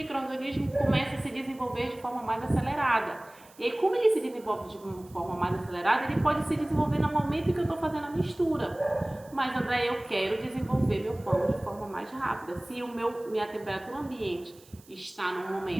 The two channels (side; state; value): right; noise; hiss, 25 dB below the sound